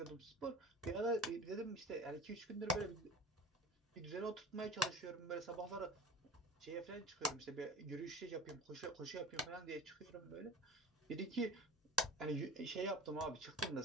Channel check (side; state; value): both; normal; correlation 0.36